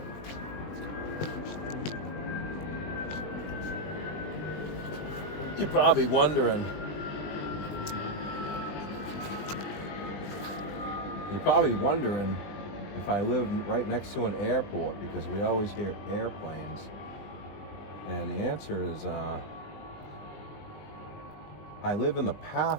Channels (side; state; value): right; late; 20 ms